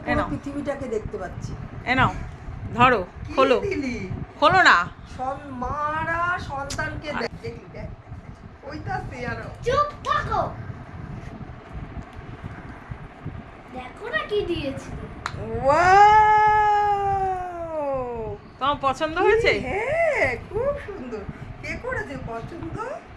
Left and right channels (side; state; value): both; identical; correlation 1.00